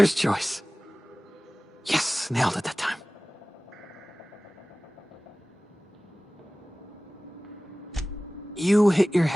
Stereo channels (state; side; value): normal; both; correlation 0.98